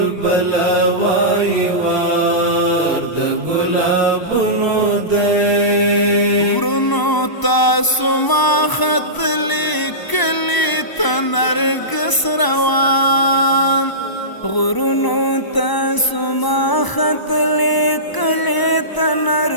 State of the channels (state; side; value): late; right; 1.0 ms